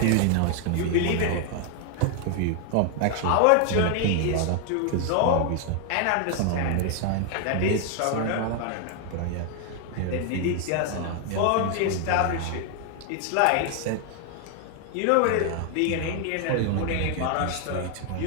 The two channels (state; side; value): different; both; correlation 0.00